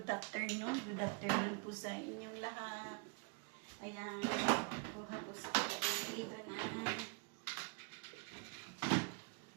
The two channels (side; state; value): left; quieter; 34.3 dB